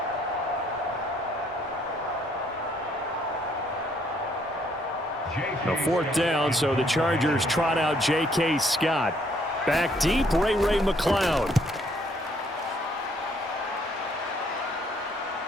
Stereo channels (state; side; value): normal; both; correlation 0.67